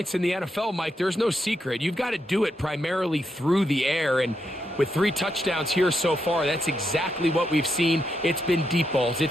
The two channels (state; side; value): normal; both; correlation 0.82